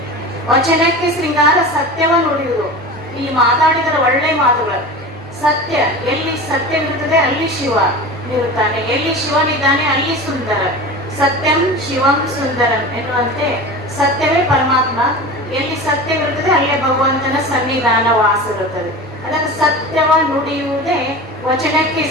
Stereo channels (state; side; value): normal; both; correlation 0.32